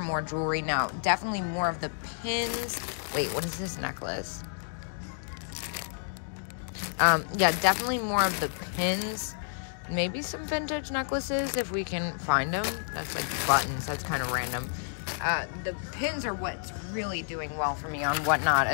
jewelry now. Definitely more of the pins. Wait, what is this necklace? Yeah, definitely more of the pins. Maybe some vintage necklaces if we can find them. That's like buttons, that's kind of random. The pins are what's really doing well for me on Whatnot,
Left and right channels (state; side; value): silent; right; digital silence